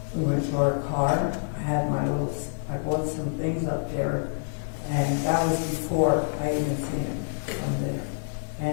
We went to our car, I bought some things up there, and that was before I even seen him from there.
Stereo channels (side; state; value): right; silent; digital silence